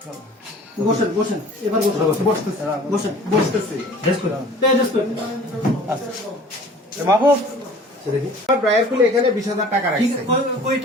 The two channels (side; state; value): both; normal; correlation 0.47